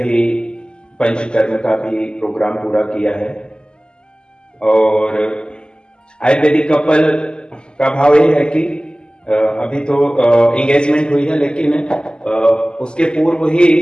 पंचकर्म का भी प्रोग्राम पूरा किया है। और आयुर्वेदिक कपल का भाव ये है कि अभी तो एंगेजमेंट हुई है, लेकिन उसके पूर्व ही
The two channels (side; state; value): right; late; 0.048 ms